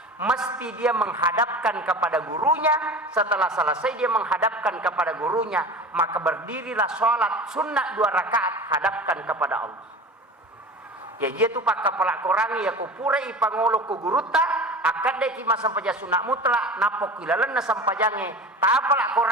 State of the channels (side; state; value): both; normal; correlation 0.34